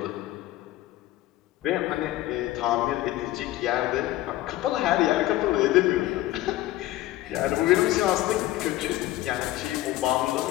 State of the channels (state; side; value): quieter; right; 15.8 dB